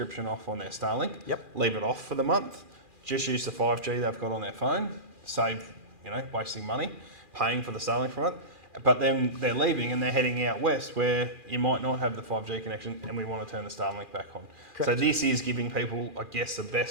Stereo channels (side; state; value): left; late; 2.4 ms